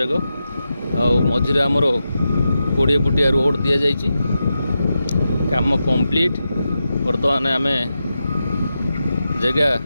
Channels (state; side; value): inverted; both; correlation -0.89